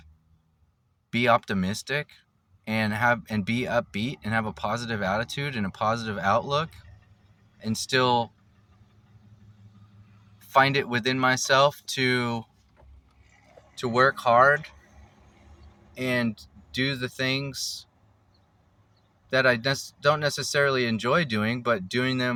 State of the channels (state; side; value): identical; both; correlation 1.00